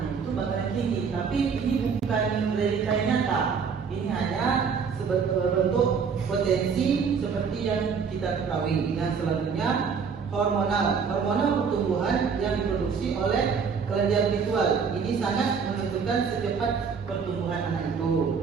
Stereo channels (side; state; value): left; quieter; 6.0 dB